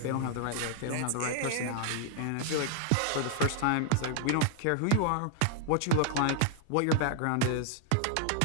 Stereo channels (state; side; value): different; both; correlation 0.00